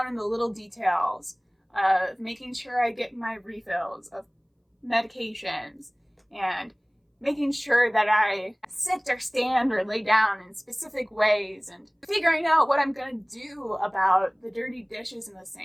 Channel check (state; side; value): identical; both; correlation 1.00